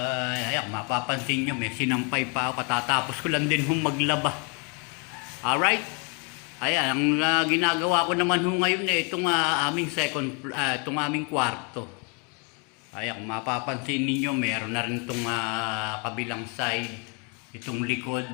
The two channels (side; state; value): right; quieter; 33.1 dB